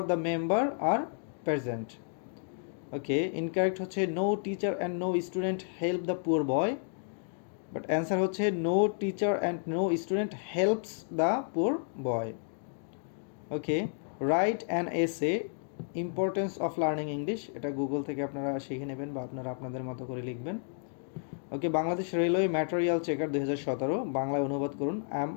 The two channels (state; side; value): silent; right; digital silence